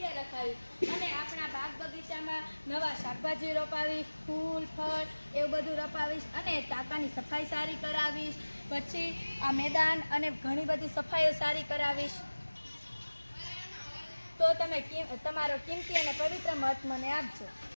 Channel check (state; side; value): inverted; both; correlation -1.00